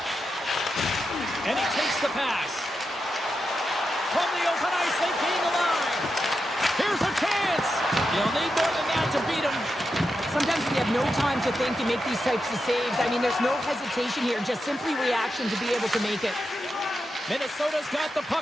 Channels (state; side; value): normal; both; correlation 0.88